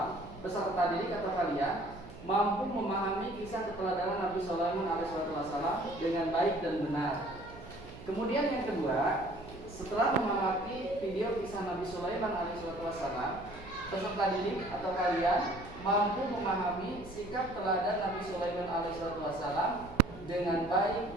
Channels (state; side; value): noise; right; hum, 16 dB below the sound